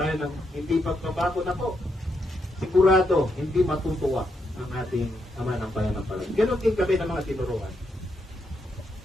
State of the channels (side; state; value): both; normal; correlation 0.80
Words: ng hindi pagbabago na po, sigurado hindi matutuwa ang ating Ama ng Pananampalataya. Ganon din kami ng mga tinuruan.